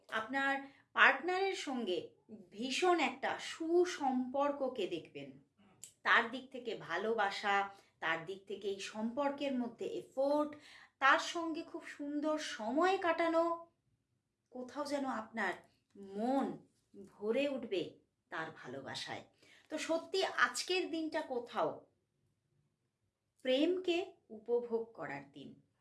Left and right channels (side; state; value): both; identical; correlation 1.00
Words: আপনার পার্টনারের সঙ্গে ভীষণ একটা সুসম্পর্ককে দেখবেন। তার দিক থেকে ভালোবাসা, তার দিক থেকে এই সম্পর্কের মধ্যে এফোর্ট, তার সঙ্গে খুব সুন্দর সময় কাটানো, কোথাও যেন আপনার মন ভরে উঠবে তার ভালোবাসায়। তো সত্যি আজকের দিনটা কোথাও প্রেমকে উপভোগ করার দিন,